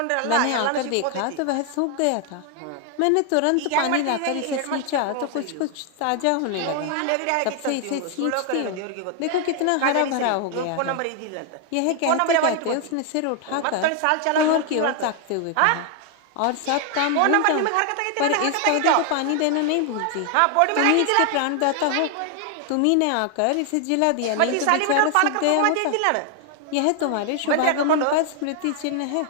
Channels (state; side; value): different; both; correlation 0.00